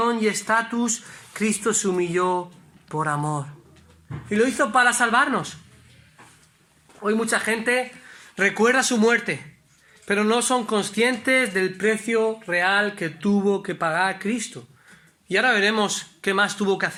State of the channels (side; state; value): both; identical; correlation 1.00